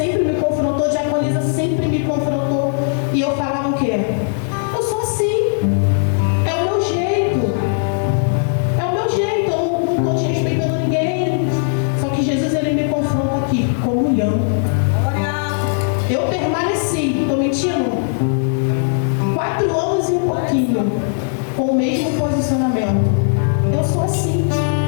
me confrontou, a diaconisa sempre me confrontou. E eu falava o quê? Eu sou assim. É o meu jeito. É o meu jeito. Eu não estou desrespeitando ninguém. Só que Jesus, ele me confronta aqui. Comunhão. Eu permaneci. Estou mentindo? 4 anos e um pouquinho. Com o mesmo posicionamento. Eu sou assim.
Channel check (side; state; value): right; silent; digital silence